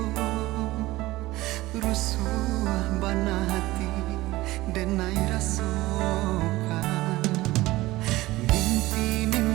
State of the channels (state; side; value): quieter; left; 18.5 dB